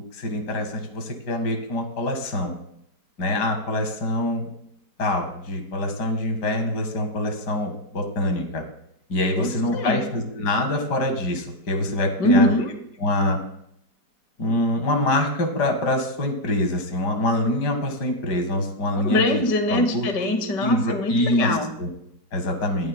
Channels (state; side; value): late; right; 5.0 ms